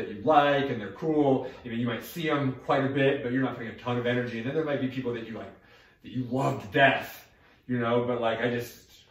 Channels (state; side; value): identical; both; correlation 1.00